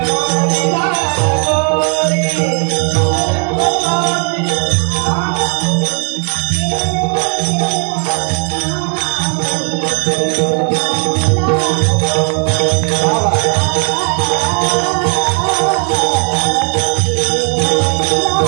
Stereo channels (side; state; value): left; quieter; 39.2 dB